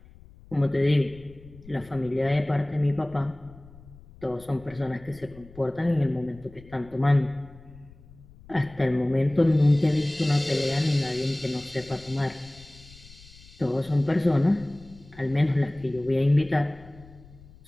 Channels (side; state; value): left; noise; rumble, 22 dB below the sound